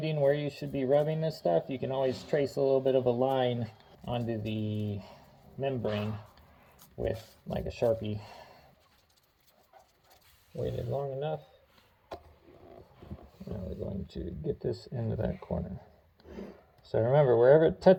where you should be rubbing this stuff, you can always trace a little bit of a line onto the membrane with like a Sharpie. Waited long enough. Now we're going to get this into that corner. So remember, wherever it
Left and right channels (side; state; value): both; identical; correlation 1.00